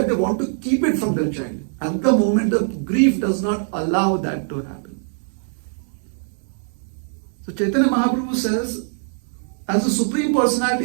they want to keep it from their child. At the moment, the grief does not allow that to happen. So Chaitanya Mahaprabhu says, as the Supreme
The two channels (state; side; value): silent; left; digital silence